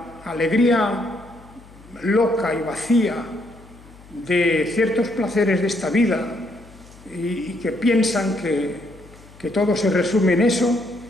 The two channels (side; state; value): left; noise; hum, 22 dB below the sound